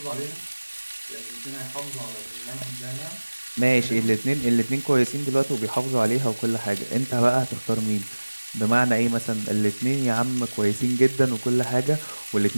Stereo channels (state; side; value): inverted; both; correlation -1.00